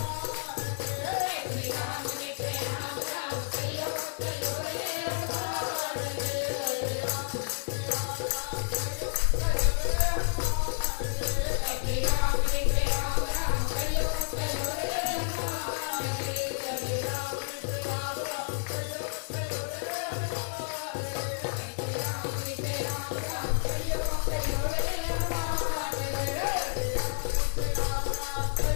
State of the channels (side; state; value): right; silent; digital silence